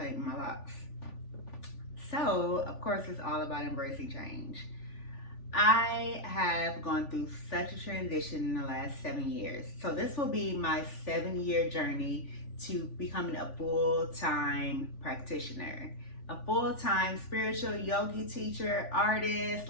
my locks. So, of course, it's all about embracing change. I have gone through such a transition in the last 7 years. So this will be my 7-year journey to becoming a full-time practitioner, a full-time spiritual yogi teacher, artist,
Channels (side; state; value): right; late; 3.5 ms